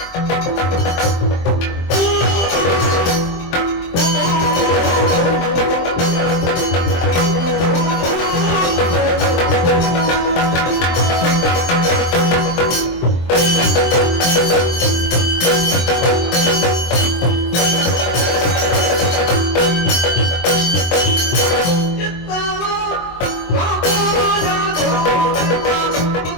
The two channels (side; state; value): right; late; 23 ms